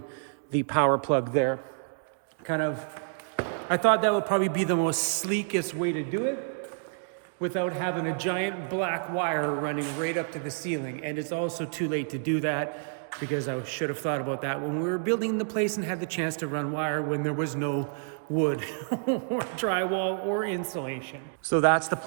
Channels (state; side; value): silent; left; digital silence